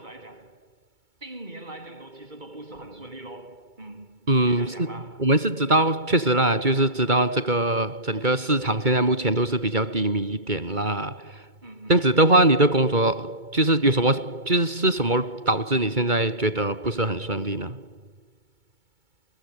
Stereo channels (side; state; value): left; late; 2.2 ms